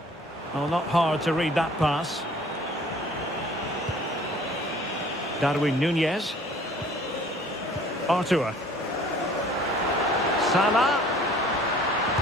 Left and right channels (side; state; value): both; normal; correlation 0.52